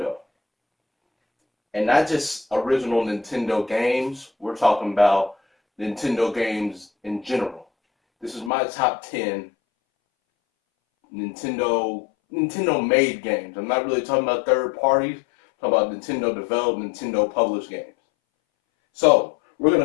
And not just original Nintendo games, we're talking about Nintendo games in general. This is my top 10 Nintendo made games. I'm not really talking about third parties. I'm talking about Nintendo developed, Nintendo published games. So we're going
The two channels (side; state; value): right; drops out; at 8.5 s